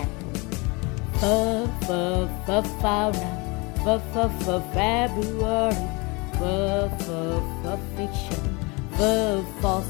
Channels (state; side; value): quieter; right; 27.8 dB